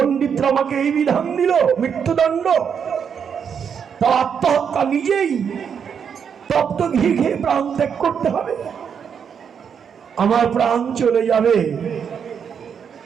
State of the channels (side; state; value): left; quieter; 7.2 dB